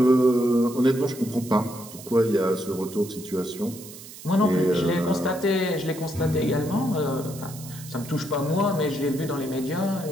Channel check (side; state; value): right; noise; hiss, 16 dB below the sound